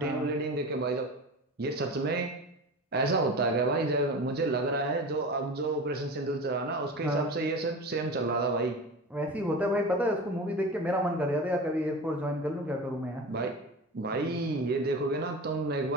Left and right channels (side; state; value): both; normal; correlation 0.31